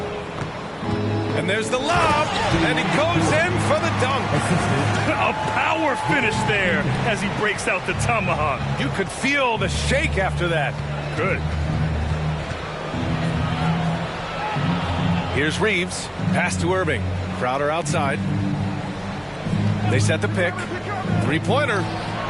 And there's the lob, and he goes in for the dunk. A power finish there as he breaks out the tomahawk. You could feel the shake after that. Good. Here's Reeves. Pass to Irving. Crowder outside. They set the pick. 3-pointer.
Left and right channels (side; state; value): both; identical; correlation 1.00